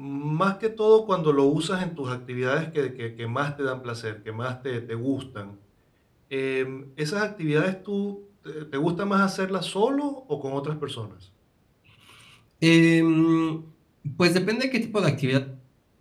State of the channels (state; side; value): identical; both; correlation 1.00